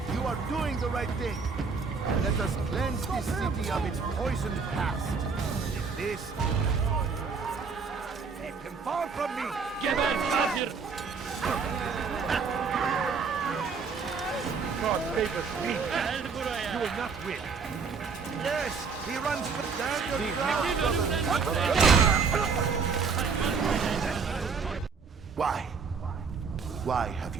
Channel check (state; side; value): quieter; left; 5.2 dB